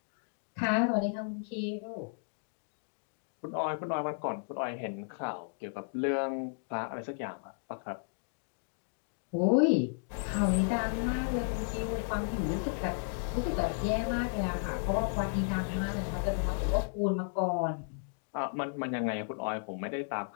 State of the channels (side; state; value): right; silent; digital silence